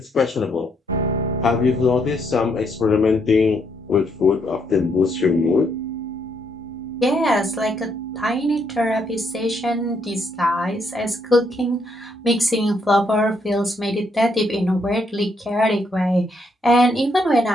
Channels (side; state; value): both; normal; correlation 0.74